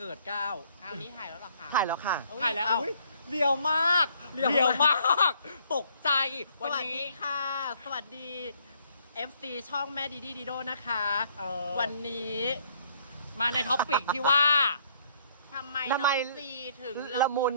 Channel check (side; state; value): both; inverted; correlation -0.64